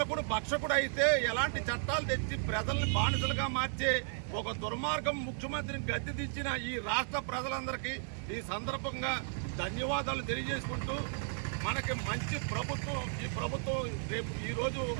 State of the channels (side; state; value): left; silent; 55 dB below the other